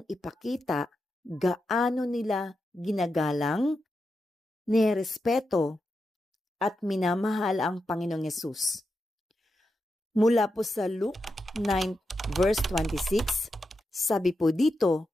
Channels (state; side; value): normal; both; correlation 0.87